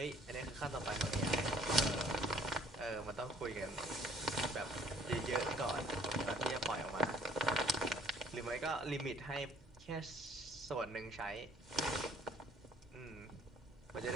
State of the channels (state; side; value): normal; both; correlation 0.58